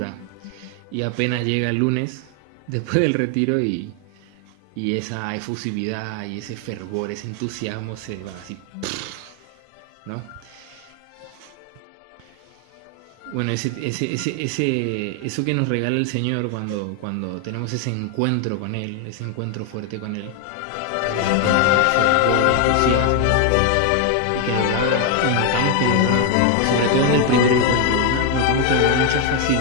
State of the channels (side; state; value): both; different; correlation 0.01